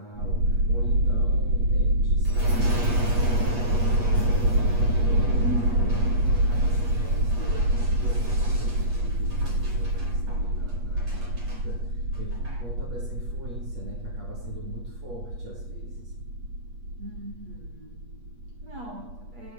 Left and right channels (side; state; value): left; late; 8.4 ms